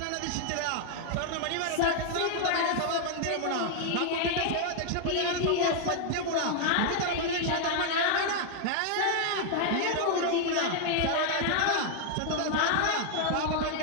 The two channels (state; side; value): different; both; correlation 0.00